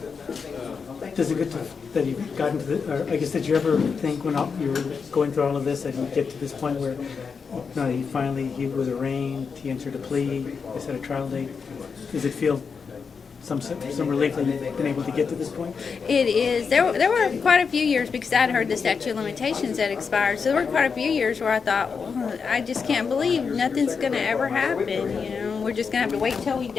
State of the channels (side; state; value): right; quieter; 5.6 dB